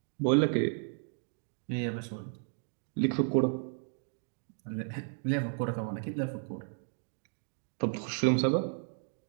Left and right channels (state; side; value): silent; left; 55 dB below the other